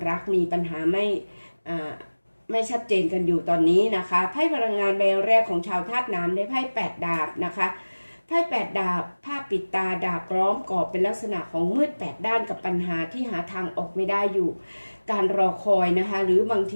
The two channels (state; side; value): inverted; both; correlation -1.00